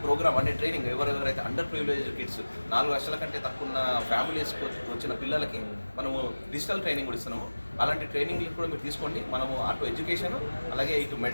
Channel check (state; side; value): inverted; both; correlation -1.00